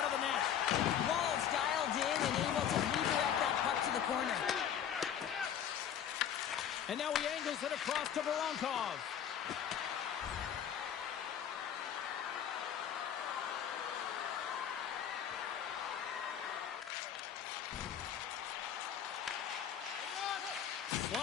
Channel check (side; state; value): right; quieter; 9.2 dB